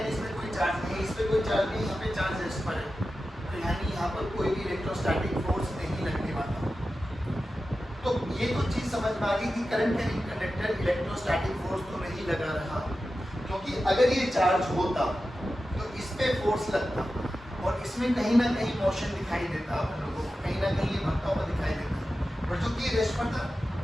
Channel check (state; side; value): normal; both; correlation 0.93